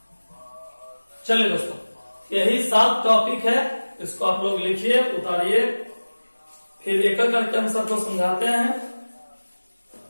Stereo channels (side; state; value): both; inverted; correlation -1.00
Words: चलिए दोस्तों, यही 7 टॉपिक है, इसको आप लोग लिखिए, उतारिए, फिर एक एक करके हम सबको समझाते हैं।